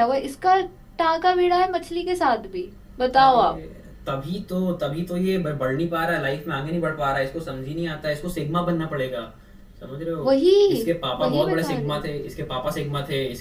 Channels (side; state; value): both; identical; correlation 1.00